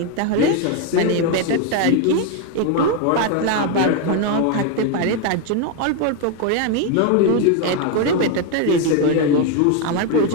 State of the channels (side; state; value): both; different; correlation 0.01